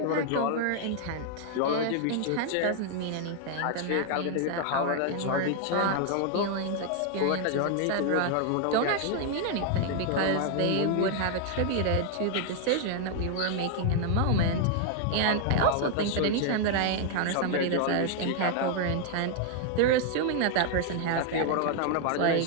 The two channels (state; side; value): different; both; correlation 0.00